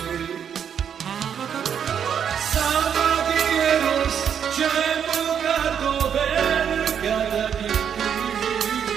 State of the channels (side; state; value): left; quieter; 8.1 dB